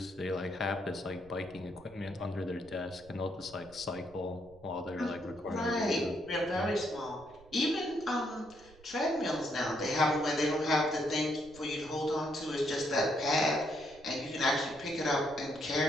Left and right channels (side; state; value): right; noise; rumble, 24 dB below the sound